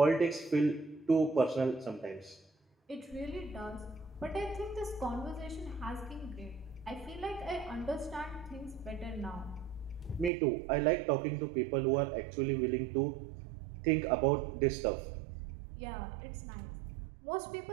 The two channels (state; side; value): drops out; left; at 10.3 s